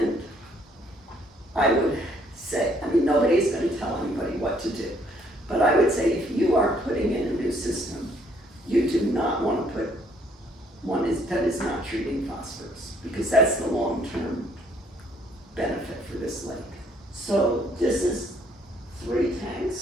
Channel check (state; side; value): normal; both; correlation 0.65